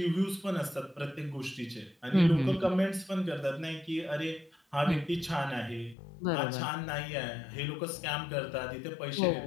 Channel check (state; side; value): drops out; right; at 6.0 s